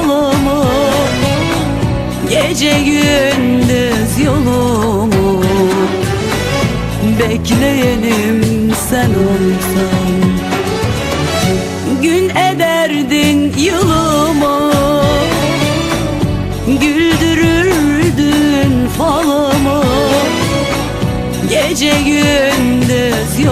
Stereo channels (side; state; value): both; identical; correlation 1.00